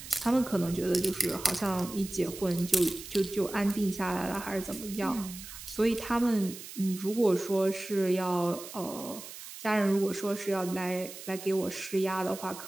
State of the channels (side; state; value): right; noise; hiss, 13 dB below the sound